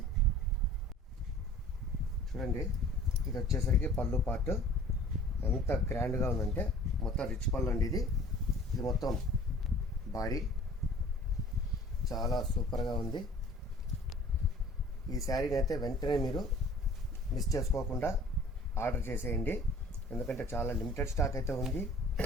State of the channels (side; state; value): both; normal; correlation 0.49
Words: చూడండి, ఇది వచ్చేసరికి పళ్ళు పార్ట్ ఎంత గ్రాండ్గా ఉందంటే మొత్తం రిచ్ పళ్ళు అండి. ఇది మొత్తం బాడీ చాలా సూపర్గా ఉంది. ఈ శారీని అయితే వెంటనే మీరు మిస్ చేసుకోకుండా ఆర్డర్ చేసేయండి, ఎందుకంటే చాలా లిమిటెడ్ స్టాక్ అయితే ఉంది.